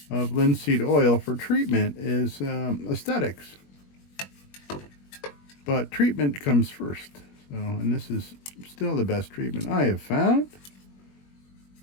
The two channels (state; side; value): late; right; 21 ms